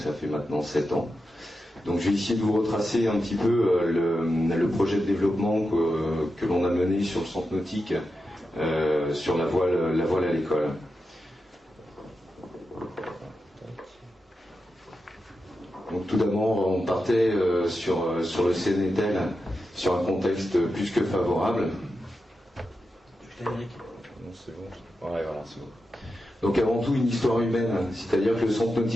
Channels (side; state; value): both; normal; correlation 0.89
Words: fait maintenant 7 ans. Donc je vais essayer de vous retracer un petit peu le projet de développement que l'on a mené sur le centre nautique, sur la voile à l'école. Donc tout d'abord, on partait sur le CNETEL, sur un contexte plus que favorable. Non, c'est bon. Ouais, voilà, c'est bon. Donc avant tout une histoire humaine, c'est-à-dire que le centre